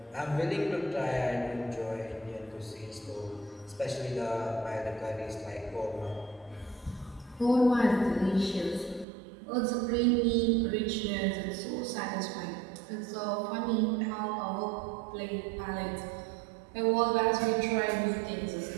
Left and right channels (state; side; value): drops out; left; at 9.1 s